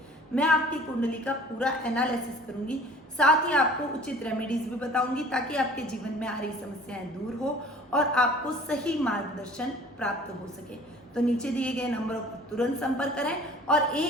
मैं आपकी कुंडली का पूरा एनालिसिस करूंगी, साथ ही आपको उचित रेमेडीज भी बताऊंगी ताकि आपके जीवन में आ रही समस्याएं दूर हो और आपको सही मार्गदर्शन प्राप्त हो सके। तो नीचे दिए गए नंबरों पर तुरंत संपर्क करें और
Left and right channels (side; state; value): both; normal; correlation 0.48